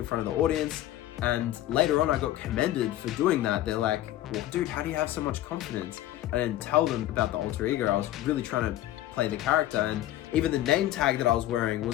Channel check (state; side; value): quieter; right; 13.8 dB